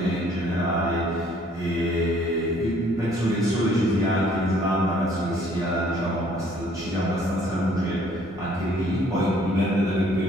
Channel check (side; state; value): both; normal; correlation 0.60